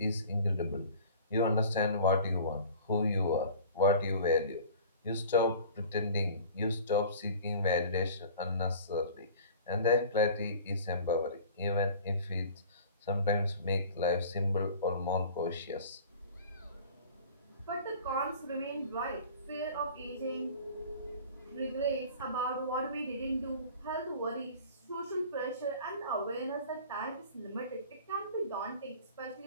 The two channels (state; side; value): inverted; both; correlation -0.44